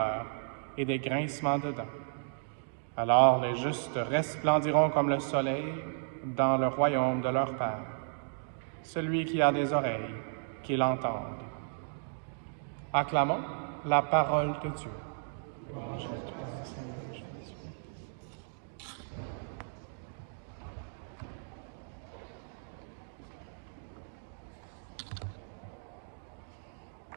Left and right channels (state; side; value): silent; left; digital silence